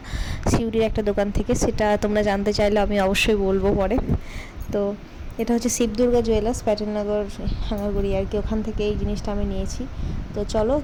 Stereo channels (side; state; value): both; identical; correlation 1.00